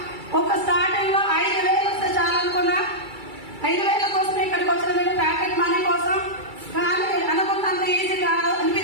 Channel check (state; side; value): late; left; 2.3 ms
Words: ఒక స్టార్టింగ్ లో 5,000 వస్తే చాలనుకున్నా. 5,000 కోసం ఇక్కడికి వచ్చిన ప్యాకెట్ మనీ కోసం. కానీ అనుకున్నంత ఈజీగా